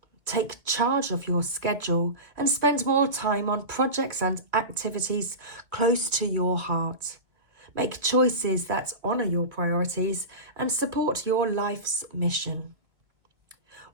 Take charge of your schedule and spend more time on projects and activities close to your heart. Make choices that honour your priorities and support your life's mission.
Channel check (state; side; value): late; left; 2.2 ms